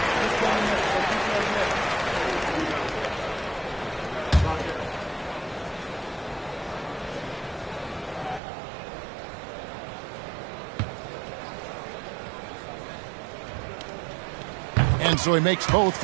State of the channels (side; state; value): left; drops out; at 8.4 s